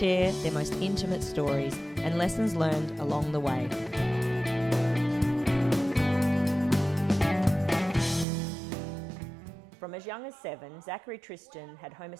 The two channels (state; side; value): drops out; left; at 8.2 s